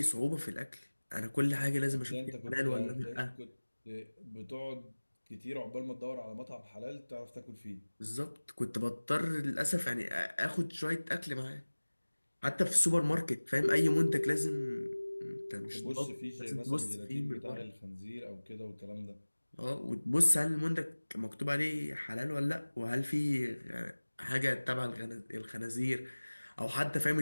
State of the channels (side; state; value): both; inverted; correlation -1.00